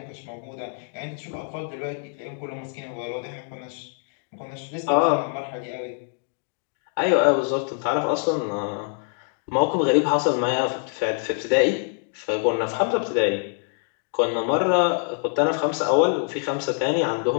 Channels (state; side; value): silent; right; 60 dB below the other